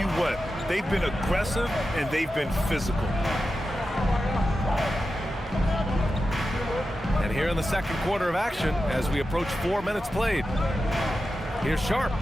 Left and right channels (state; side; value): normal; both; correlation 0.91